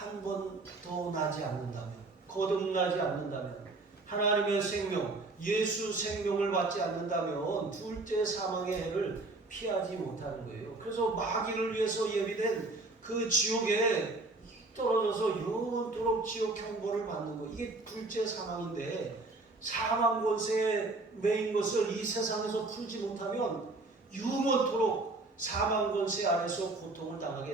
번 더 나지 않는다면 거듭나지 않는다면 하나님의 생명 예수 생명을 받지 않는다면 둘째 사망의 해를 피하지 못하는 거예요. 그래서 마귀를 위해서 예비된 그 지옥에 떨어져서 영원토록 지옥 형벌을 받는 거 이게 둘째 사망인데 사망 권세에 매인 것을 이 세상에서 풀지 못하면 영원토록 사망 권세 아래서 고통을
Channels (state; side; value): quieter; left; 3.2 dB